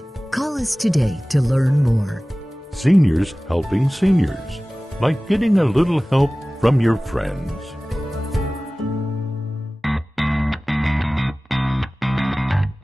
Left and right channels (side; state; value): both; normal; correlation 0.98